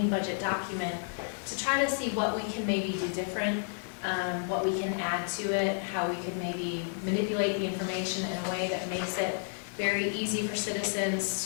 budget document, to try to see what we can maybe do different, what we can add to it, how we could maybe manipulate the information in a way that makes it very easy for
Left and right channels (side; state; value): right; silent; 57 dB below the other